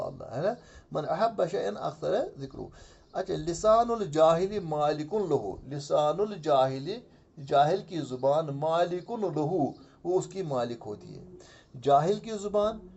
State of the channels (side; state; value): both; identical; correlation 1.00